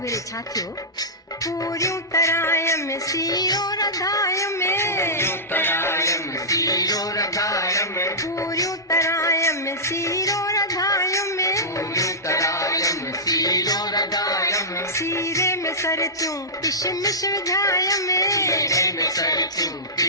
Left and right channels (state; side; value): normal; both; correlation -0.15